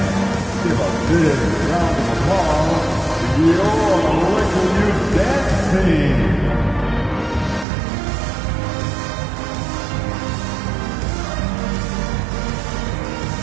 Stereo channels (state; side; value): drops out; left; at 7.7 s